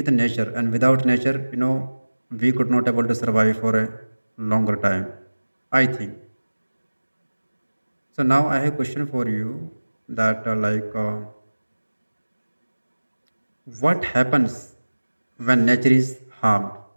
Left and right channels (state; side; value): inverted; both; correlation -1.00